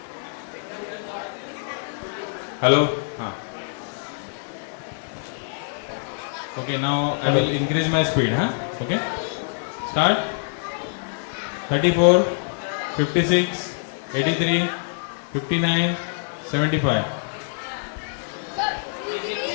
Hello? Okay, now I will increase my speed, huh? Okay? Start. 34, 56, 83, 59, 75.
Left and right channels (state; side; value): silent; right; 62 dB below the other